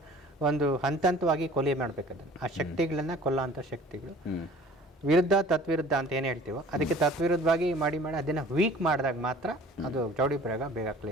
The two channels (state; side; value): normal; both; correlation 0.48